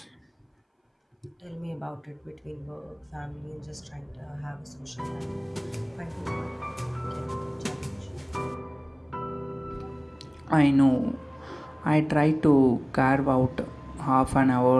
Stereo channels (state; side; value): identical; both; correlation 1.00